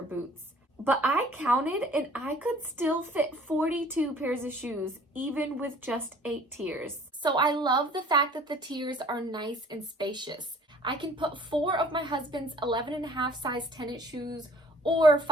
boots. But I counted and I could still fit 42 pairs of shoes even with just 8 tiers. So I love the fact that the tiers are nice and spacious. I can put 4 of my husband's 11.5 size tennis shoes or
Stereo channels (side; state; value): both; normal; correlation 0.53